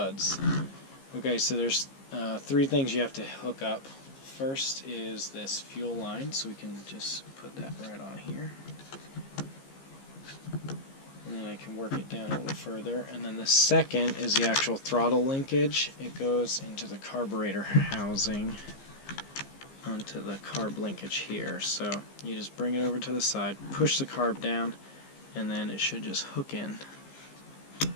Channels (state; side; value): late; right; 15 ms